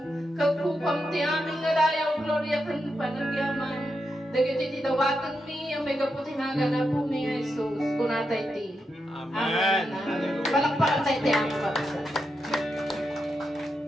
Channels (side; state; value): both; normal; correlation 0.85